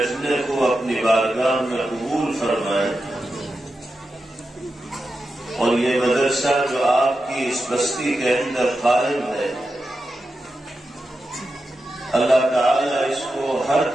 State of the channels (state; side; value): normal; both; correlation 0.90